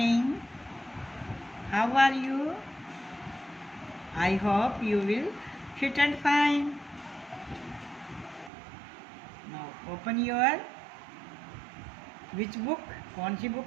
How are you? I hope you will fit and fine. Now open your which book? कौन सी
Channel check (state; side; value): drops out; left; at 8.5 s